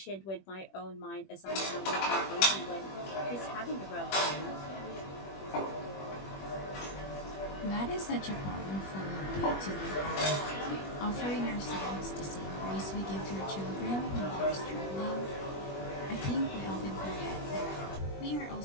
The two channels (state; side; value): late; right; 21 ms